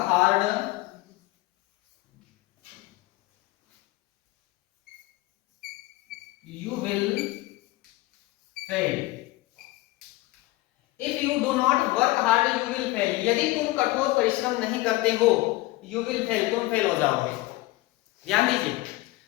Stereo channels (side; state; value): right; quieter; 19.6 dB